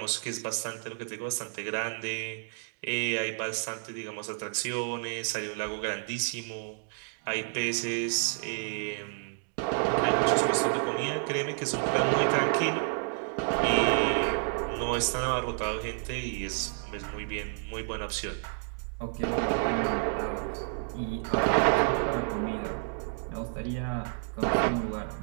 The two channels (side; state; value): left; silent; 58 dB below the other